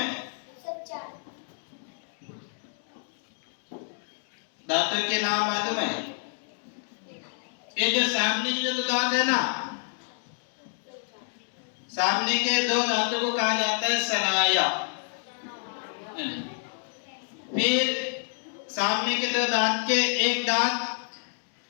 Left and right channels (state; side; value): silent; right; 59 dB below the other